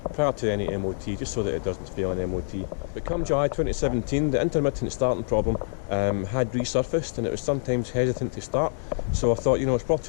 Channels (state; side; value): silent; right; digital silence